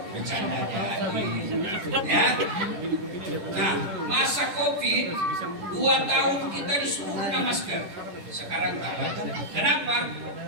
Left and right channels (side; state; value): left; late; 10 ms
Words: Bercanda ya. Nah, masa Covid 2 tahun kita disuruh guna masker. Sekarang tak. Kenapa?